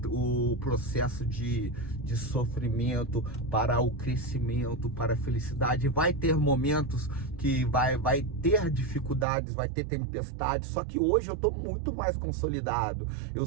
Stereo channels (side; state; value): left; drops out; at 9.2 s